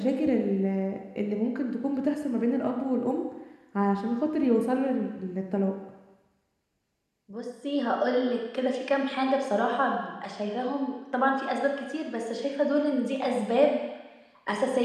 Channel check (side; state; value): both; identical; correlation 1.00